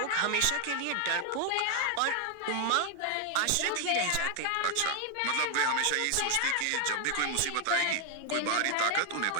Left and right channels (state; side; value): different; both; correlation 0.01